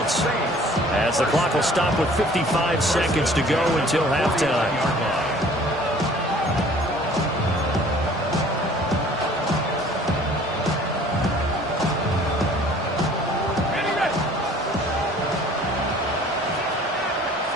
as the clock will stop with 55 seconds to go until halftime.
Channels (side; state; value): both; normal; correlation 0.52